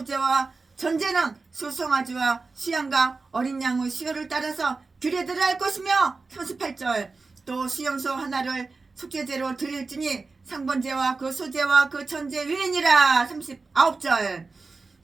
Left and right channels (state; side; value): quieter; left; 4.0 dB